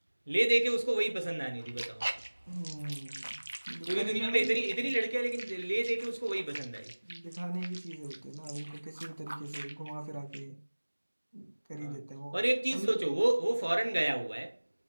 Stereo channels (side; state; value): both; inverted; correlation -1.00